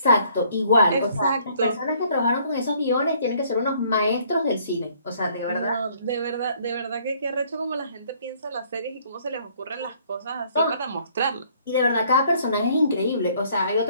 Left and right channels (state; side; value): inverted; both; correlation -0.62